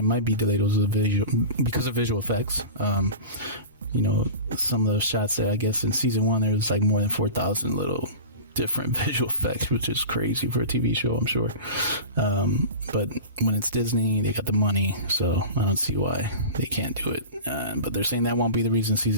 might be delayed was because of visual effects. Some of those shots that I guess in season 1 there was like more than 4,000 little different visual effects, which is crazy for a TV show, I'm sure. But when it's Disney, they got the money, so I don't see why they can't do it. But they're saying that won't be the reason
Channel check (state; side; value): inverted; both; correlation -0.32